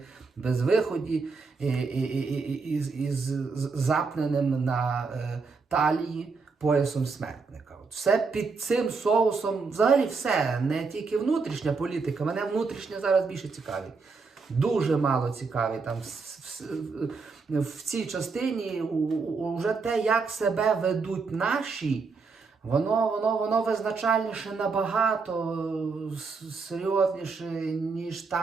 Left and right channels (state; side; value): quieter; left; 4.6 dB